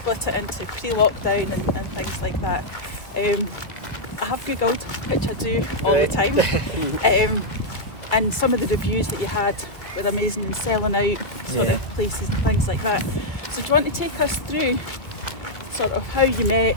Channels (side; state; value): right; late; 1.9 ms